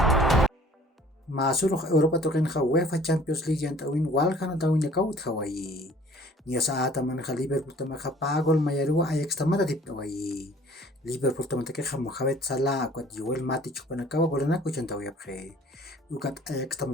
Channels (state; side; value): normal; both; correlation 0.52